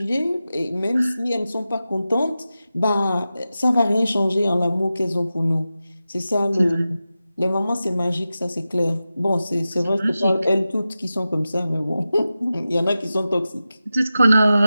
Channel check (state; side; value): inverted; both; correlation -0.93